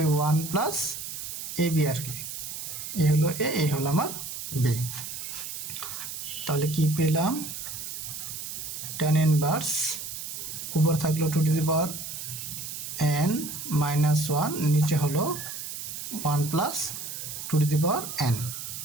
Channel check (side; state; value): right; noise; hiss, 7 dB below the sound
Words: 1 plus ab আর কি, এ হলো a, এই হলো আমার b। তাহলে কি পেলাম, tan ইনভার্স উপর থাকলো 2n মাইনাস 1, নিচে হলো 1 প্লাস 2n।